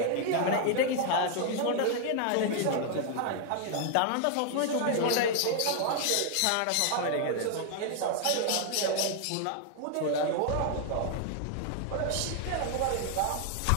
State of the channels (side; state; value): both; different; correlation 0.00